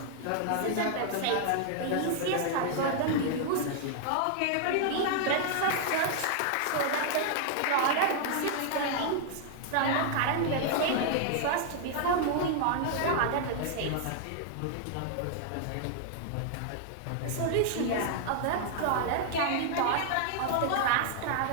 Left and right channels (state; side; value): different; both; correlation 0.00